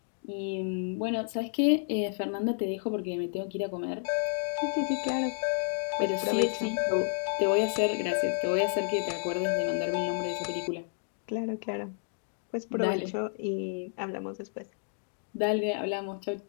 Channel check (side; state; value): right; silent; digital silence